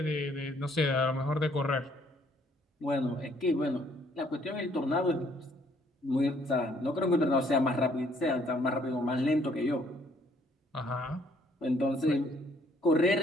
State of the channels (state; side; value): normal; both; correlation 0.64